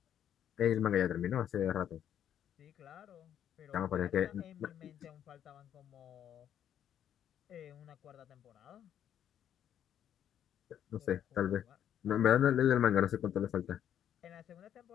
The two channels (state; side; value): quieter; right; 9.9 dB